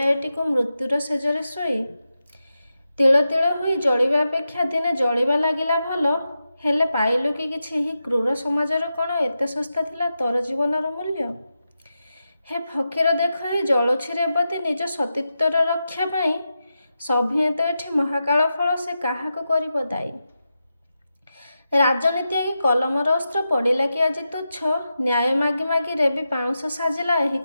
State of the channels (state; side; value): inverted; both; correlation -0.90